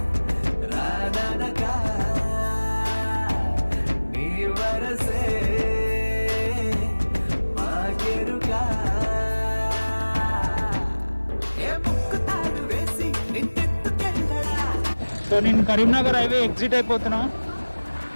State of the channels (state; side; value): inverted; both; correlation -1.00